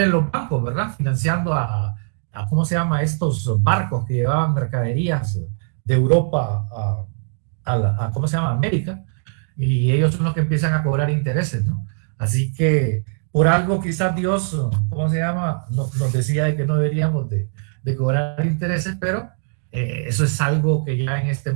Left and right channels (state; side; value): silent; left; 65 dB below the other